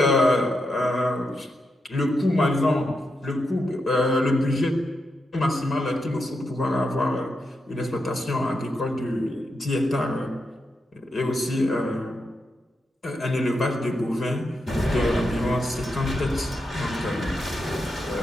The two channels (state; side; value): normal; both; correlation 0.85